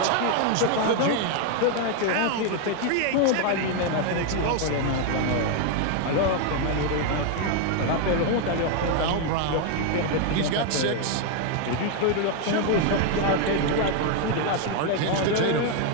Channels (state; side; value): different; both; correlation 0.01